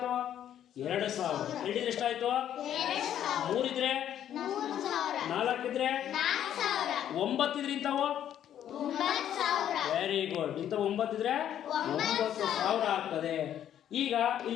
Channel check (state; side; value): quieter; right; 10.5 dB